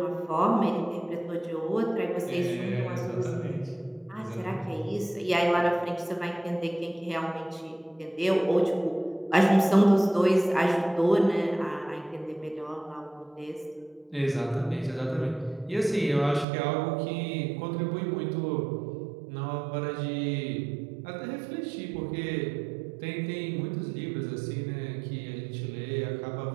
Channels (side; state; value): left; drops out; at 16.4 s